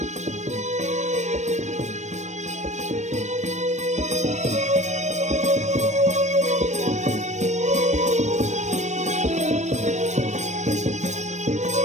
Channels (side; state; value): left; late; 0.34 ms